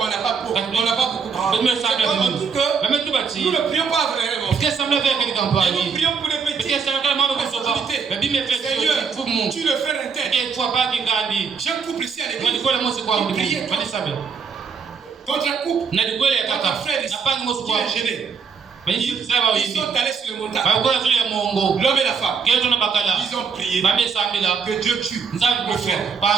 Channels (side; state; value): left; quieter; 5.9 dB